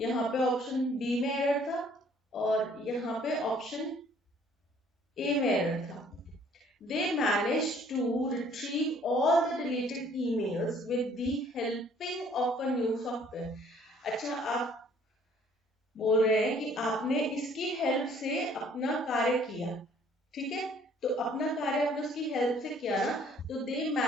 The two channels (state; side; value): normal; both; correlation 0.59